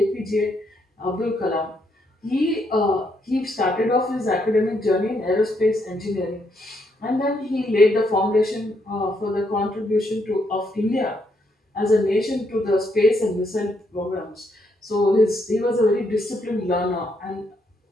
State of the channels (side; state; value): both; normal; correlation 0.75